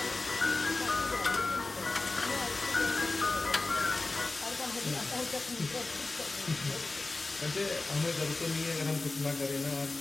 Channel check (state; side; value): quieter; right; 3.3 dB